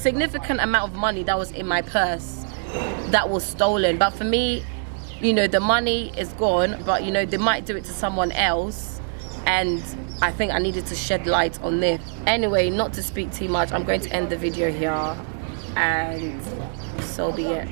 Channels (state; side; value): silent; left; digital silence